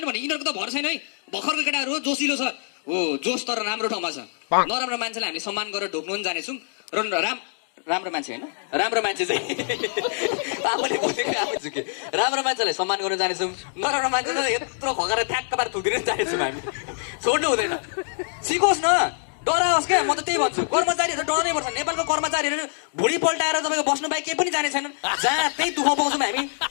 नि भने यिनीहरूको त भर छैन है भर्खरको केटाहरू हो जोसिलो छ हो जोस तर राम्रो ठाउँमा छ नराम्रो मान्छेलाई हामीले सम्मान गरेर ढोक्नु पनि जानेछौँ र राम्रो मान्छे होइन राम्रो मान्छे चाहिँ आफूले बोलेको आफै झुके राम्रो मान्छेलाई सम्मान गर्न जानेछौँ नराम्रो मान्छेलाई यत्रो खगेर ठ्याक्क पार थुकिदिन जानेछौँ हामी छोड्नु हुँदैन सिकोस् न डराओस् क्या म त त्यही भन्छु कर्मचारीहरू डराउनै पर्छ नेपालको कर्मचारीहरू भुँडी पल्टाएर तपाईँको बस्नु बाहेक केही पनि जाने छैनन् जहाँ त्यही दुःख पाउँछौँ हामी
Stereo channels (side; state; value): right; silent; digital silence